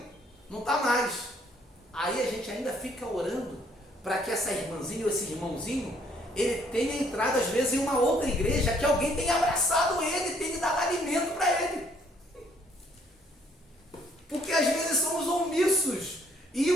não está mais. Aí a gente ainda fica orando para que essa irmãzinha ou esse irmãozinho, ele tenha entrado às vezes em uma outra igreja, que alguém tenha abraçado ele, tenha dado alimento para ele. Porque às vezes somos omissos, e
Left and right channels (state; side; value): normal; both; correlation 0.65